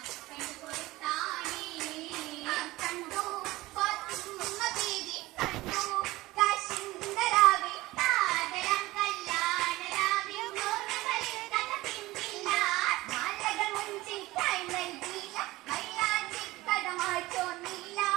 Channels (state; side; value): quieter; left; 19.0 dB